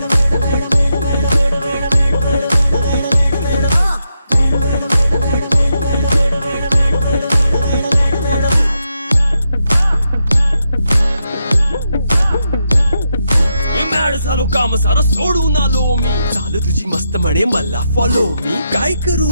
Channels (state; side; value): inverted; both; correlation -0.84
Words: झालो काम सारं सोडून आलो मी चाल तुझी मस्त म्हणे मला फॉलो मी काय करू